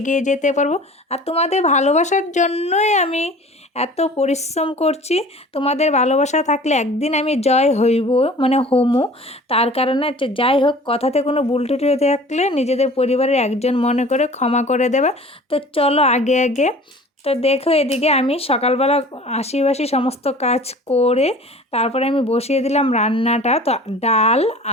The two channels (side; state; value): both; normal; correlation 0.44